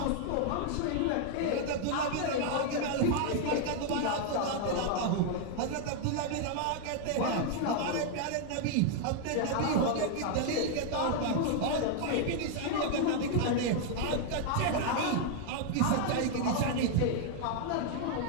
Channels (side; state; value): both; different; correlation 0.00